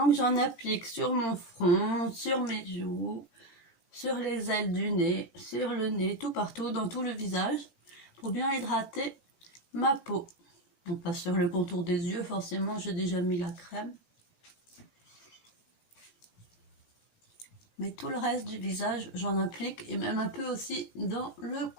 j'en applique sur mon front, sur mes joues, sur les ailes du nez, sur le nez, tout partout, dans tout le visage, pour bien hydrater ma peau. Donc pas sur le contour des yeux, forcément j'ai déjà mis la crème. Mais tout le reste du visage, j'en applique, et même un peu aussi dans le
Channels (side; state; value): right; late; 17 ms